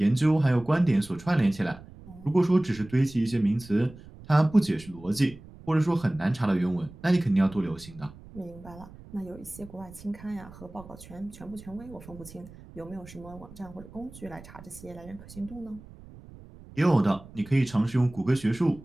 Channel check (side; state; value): right; noise; rumble, 19 dB below the sound